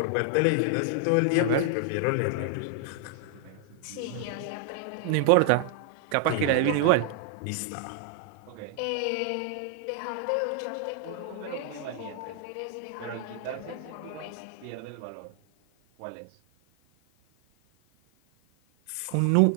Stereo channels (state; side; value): different; both; correlation 0.00